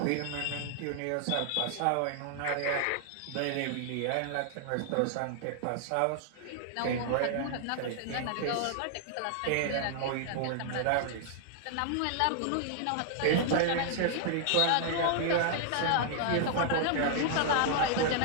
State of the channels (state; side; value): different; both; correlation 0.00